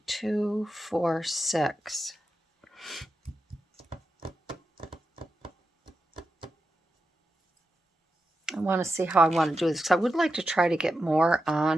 2, 4, 6. I want to see how I want to do this because I would like to try to get more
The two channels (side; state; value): both; normal; correlation 0.89